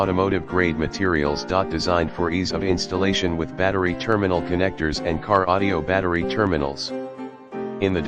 grade materials. Designed for ease of installation with battery terminal connectors and car audio battery terminals. In the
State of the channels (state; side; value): identical; both; correlation 1.00